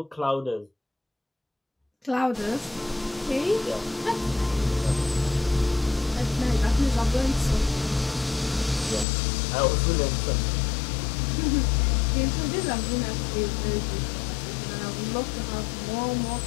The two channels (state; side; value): drops out; right; at 9.1 s